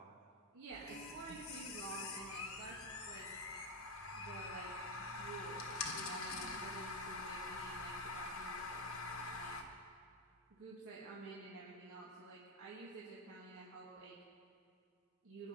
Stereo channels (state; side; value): normal; both; correlation 0.07